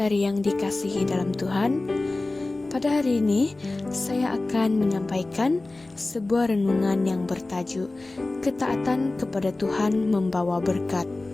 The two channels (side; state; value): right; quieter; 3.0 dB